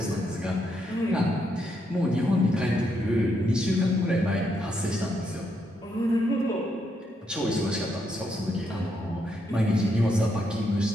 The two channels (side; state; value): both; normal; correlation 0.78